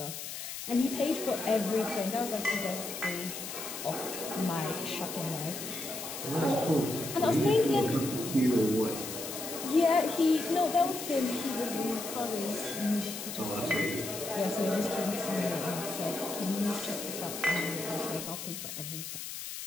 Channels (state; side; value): noise; left; hiss, 7 dB below the sound